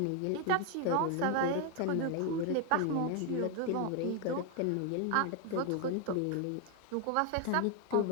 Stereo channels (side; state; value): both; different; correlation 0.01